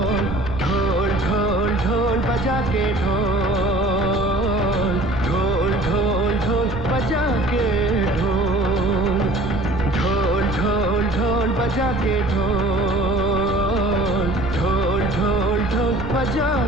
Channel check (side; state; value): right; noise; rumble, 9 dB below the sound